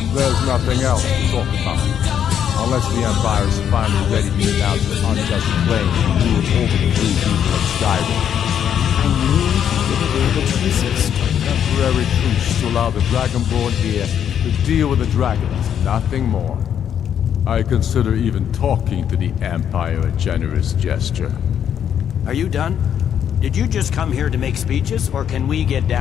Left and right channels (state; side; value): quieter; right; 9.0 dB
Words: There's nothing else to talk about. Unless the Empire is finally ready to announce an unjust claim to rule over the free people of Skyrim. I knew you would be able to resist. Temporary truce to allow the Dragonborn here to deal with the dragons, nothing more. I consider even talking to the Empire a generous gesture. Are you done? Did you just come here to make speeches, or can we get